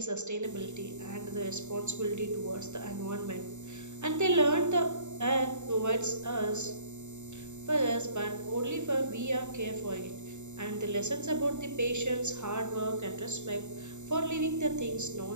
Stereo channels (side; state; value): left; late; 0.83 ms